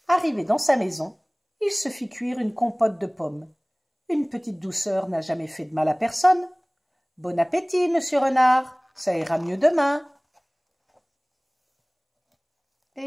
Arrivé dans sa maison, il se fit cuire une compote de pommes. Une petite douceur n'a jamais fait de mal à personne. Bon appétit, Monsieur Renard, ça ira mieux demain.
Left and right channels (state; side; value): identical; both; correlation 1.00